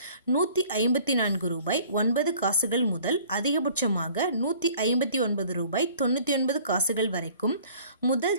154 ரூபாய் 9 காசுகள் முதல் அதிகபட்சமாக 159 ரூபாய் 99 காசுகள் வரைக்கும்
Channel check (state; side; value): inverted; both; correlation -0.52